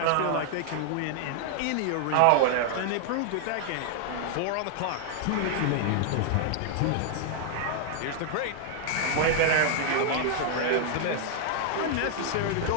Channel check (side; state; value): both; different; correlation 0.00